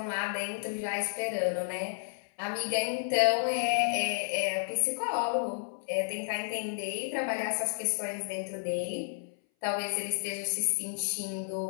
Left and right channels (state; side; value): silent; right; 57 dB below the other